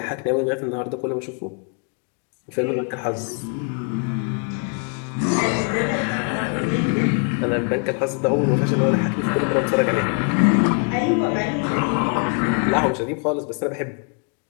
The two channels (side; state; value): right; quieter; 39.9 dB